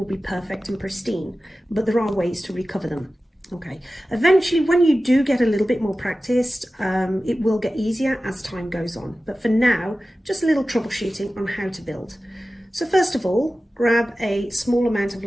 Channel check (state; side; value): normal; both; correlation 0.95